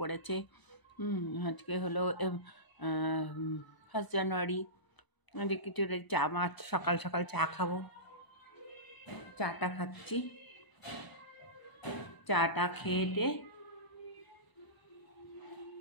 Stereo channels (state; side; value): late; right; 1.0 ms